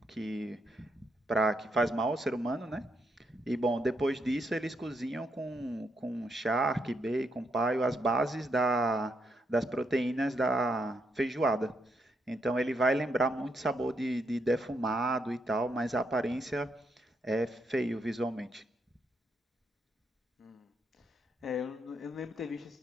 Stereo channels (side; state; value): both; normal; correlation 0.78